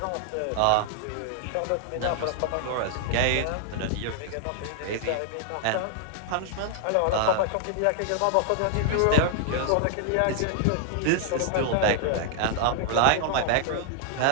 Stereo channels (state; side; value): different; both; correlation 0.00